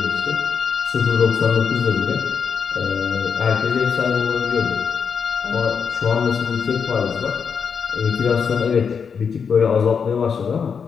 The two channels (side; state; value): right; quieter; 6.4 dB